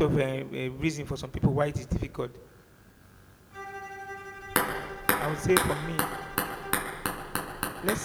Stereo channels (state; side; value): identical; both; correlation 1.00